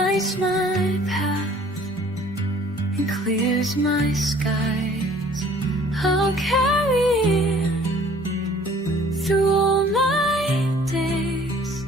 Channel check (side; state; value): both; normal; correlation 0.54